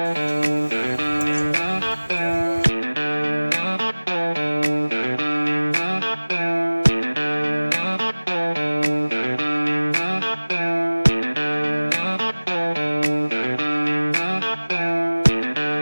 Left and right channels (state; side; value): inverted; both; correlation -1.00